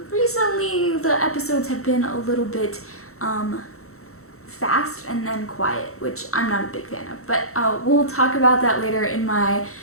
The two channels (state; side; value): late; right; 0.63 ms